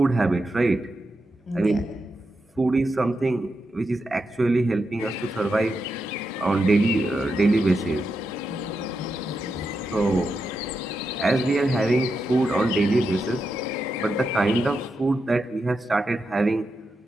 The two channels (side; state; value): both; normal; correlation 0.86